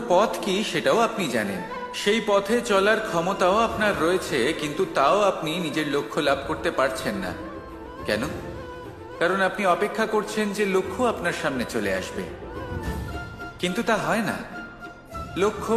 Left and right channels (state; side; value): identical; both; correlation 1.00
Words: পথ কি সেটাও আপনি জানেন, সেই পথে চলার ক্ষমতাও আপনার রয়েছে, কিন্তু তাও আপনি নিজের লক্ষ্য লাভ করতে পারছেন না। কেন? কারণ আপনি অপেক্ষা করছেন যে লক্ষ্য আপনার সামনে চলে আসবে, কিন্তু তা হয় না। লক্ষ্য